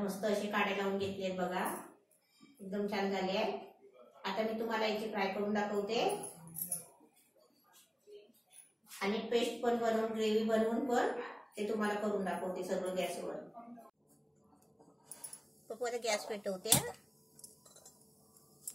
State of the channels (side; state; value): both; identical; correlation 1.00